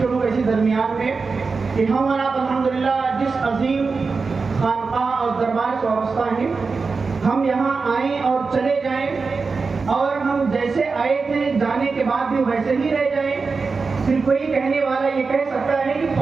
کروں گا اسی درمیان میں کہ ہم اور آپ الحمدللہ جس عظیم خانقاہ اور دربار سے وابستہ ہیں ہم یہاں آئیں اور چلے جائیں اور ہم جیسے آئے تھے جانے کے بعد بھی ویسے ہی رہ جائیں. صرف کوئی کہنے والا یہ کہہ سکتا ہے کہ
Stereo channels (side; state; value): left; quieter; 4.5 dB